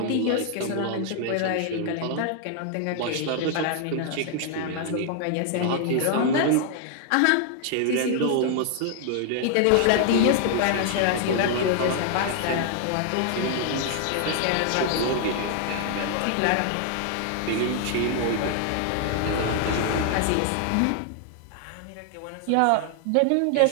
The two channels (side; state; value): both; different; correlation 0.00